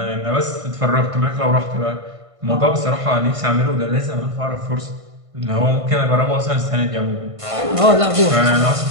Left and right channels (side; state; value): left; late; 1.5 ms